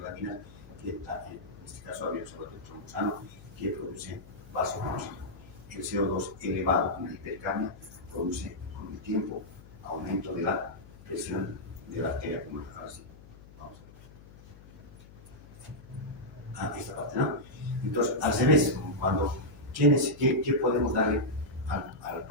que en este caso había usado el trombosano que produce vasoconstricción. El CO2 elevado con la hipercamia produce con el tiempo aumento de la presión de la arteria pulmonar. Ahora sí, vamos a ver. Esta parte, ¿no? Entonces, al revés, ¿qué podemos darle al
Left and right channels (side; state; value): left; noise; hum, 20 dB below the sound